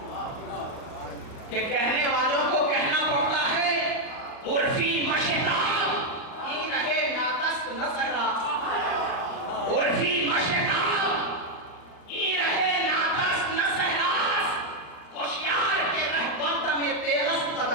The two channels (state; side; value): late; right; 38 ms